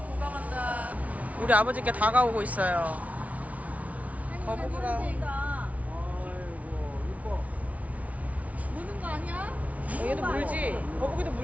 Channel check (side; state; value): left; late; 0.068 ms